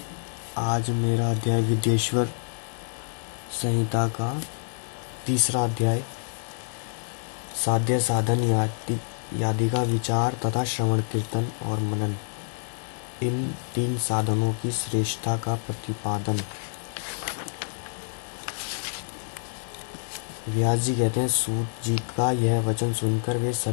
आज मेरा अध्याय विद्येश्वर संहिता का तीसरा अध्याय साध्य साधन आदि का विचार तथा श्रवण कीर्तन और मनन, इन तीन साधनों की श्रेष्ठता का प्रतिपादन। व्यास जी कहते हैं, सूत जी का यह वचन सुनकर वे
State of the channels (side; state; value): right; silent; digital silence